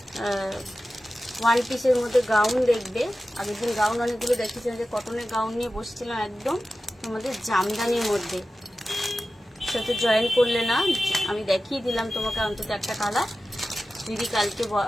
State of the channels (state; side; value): normal; both; correlation 0.94